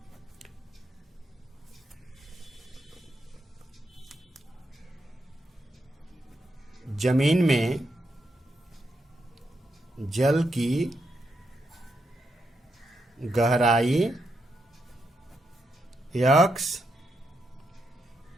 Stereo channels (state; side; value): normal; both; correlation 0.82